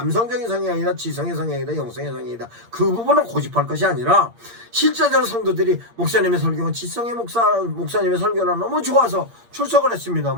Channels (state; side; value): late; left; 8.7 ms